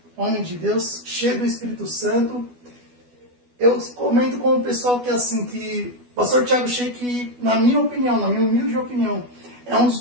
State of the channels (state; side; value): late; left; 12 ms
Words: homem de Deus, cheio do Espírito Santo. Eu comento com o pessoal que assim, que o pastor Thiago Sheik, na minha opinião, na minha humilde opinião, é um dos